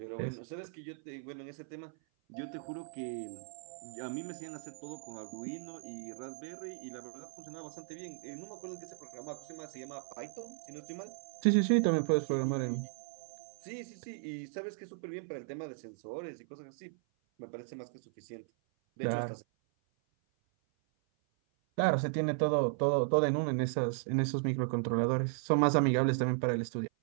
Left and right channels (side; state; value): left; silent; 54 dB below the other